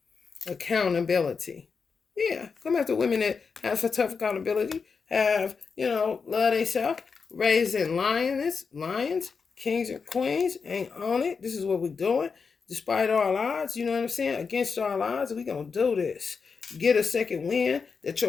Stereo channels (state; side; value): quieter; right; 5.4 dB